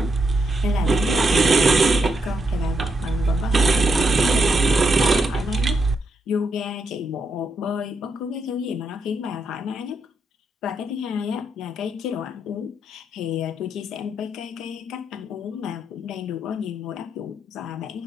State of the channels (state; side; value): normal; both; correlation 0.80